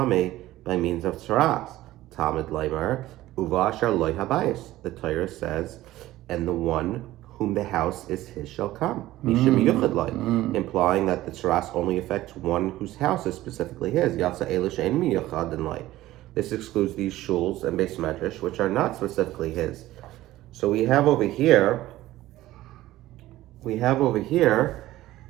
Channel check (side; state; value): left; quieter; 15.8 dB